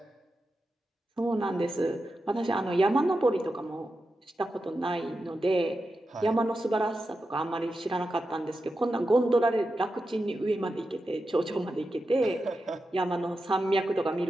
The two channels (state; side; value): normal; both; correlation 0.89